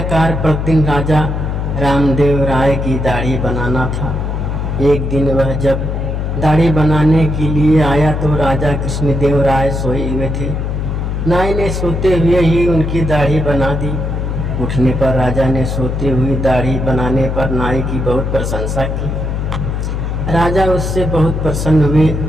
कार्य प्रतिदिन राजा रामदेव राय की दाढ़ी बनाना था। एक दिन वह जब दाढ़ी बनाने के लिए आया तो राजा कृष्णदेव राय सोए हुए थे। नाई ने सोते हुए ही उनकी दाढ़ी बना दी। उठने पर राजा ने सोते हुए दाढ़ी बनाने पर नाई की बहुत प्रशंसा की। राजा उससे बहुत प्रसन्न हुए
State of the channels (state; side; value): noise; left; hum, 2 dB below the sound